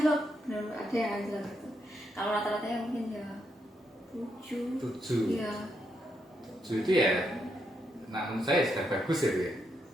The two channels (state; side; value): normal; both; correlation 0.80